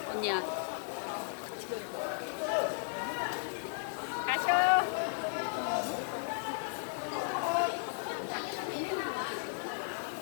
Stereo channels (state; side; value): silent; right; digital silence